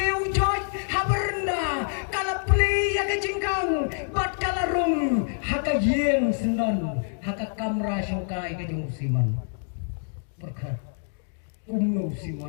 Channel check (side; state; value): right; silent; digital silence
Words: joy haberna kalapli ya kajingkang bat kalarung hakayeng sendan hakakamra syongkai kajong Simon berkat umno